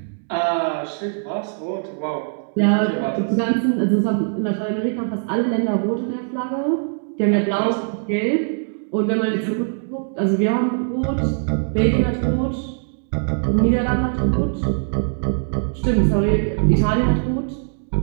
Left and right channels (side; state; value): left; silent; digital silence